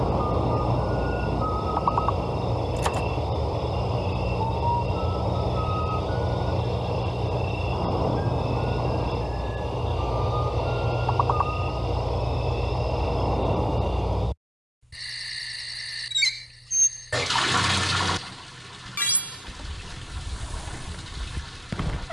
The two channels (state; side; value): normal; both; correlation 0.96